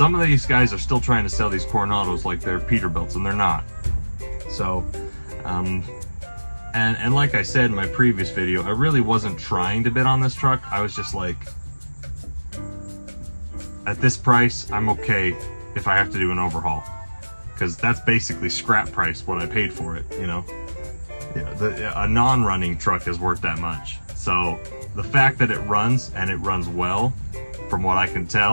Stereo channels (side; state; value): both; inverted; correlation -1.00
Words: of these guys are still trying to sell these Coronados like they're Peterbilts, and they're not. So, and like I said in my previous video, I really wasn't trying to bid on this truck. I was just like, at this price, I'm okay if I have to do an overhaul, because that's basically scrap price what I paid for it, you know. Yeah, a non-running truck is worth that much. So the fact that it runs, and it runs well, from what I can